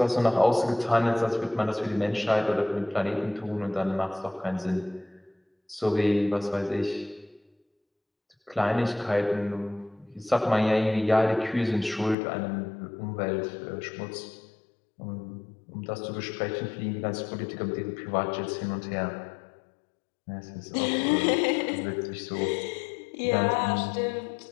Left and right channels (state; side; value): drops out; right; at 12.2 s